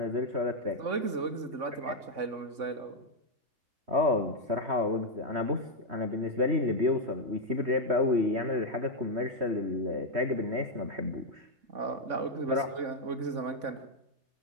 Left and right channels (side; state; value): left; late; 3.6 ms